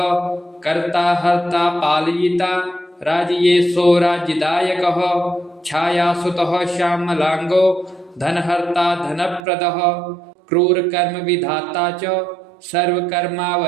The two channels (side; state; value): left; drops out; at 9.5 s